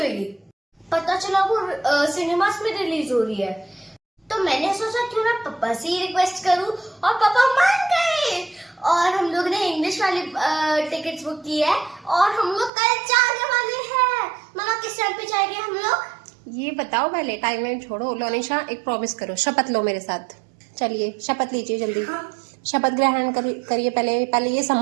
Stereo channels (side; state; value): left; drops out; at 12.7 s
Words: पता चला वो सिनेमास में रिलीज हो रही है। तो मैंने सोचा क्यों ना पापा से ही रिक्वेस्ट करूं और पापा मान गए और हम लोग ने इंग्लिश वाली टिकट्स बुक की है और हम लोग कल जाने वाले हैं। मामा किस टाइम पे जाएंगे हम लोग? ये बताओ पहले, टाइम वाइम छोड़ो। लोनिशा एक प्रॉमिस करो, शपथ लो मेरे साथ। चलिए शपथ लीजिए जल्दी। हाँ। शपथ ग्रहण करिए। पहले ये